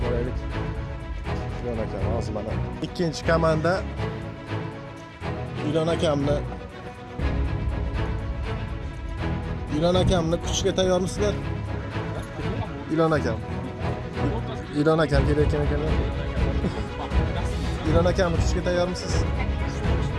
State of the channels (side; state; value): both; identical; correlation 1.00